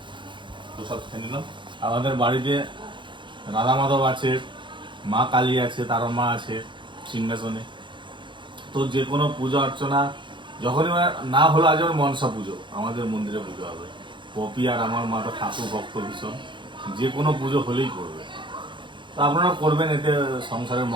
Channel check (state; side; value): late; left; 0.23 ms